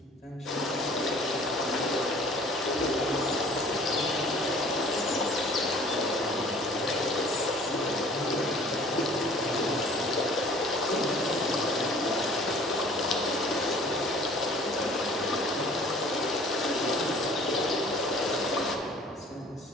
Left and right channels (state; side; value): normal; both; correlation 0.51